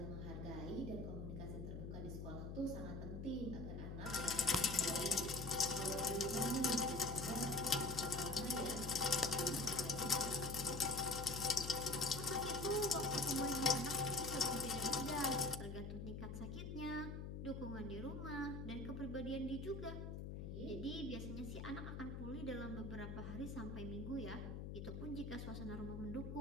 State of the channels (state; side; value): noise; left; hum, 6 dB below the sound